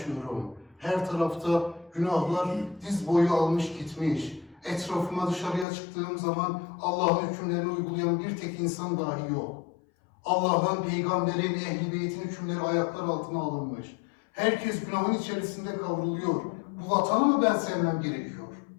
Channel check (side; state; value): right; drops out; at 5.7 s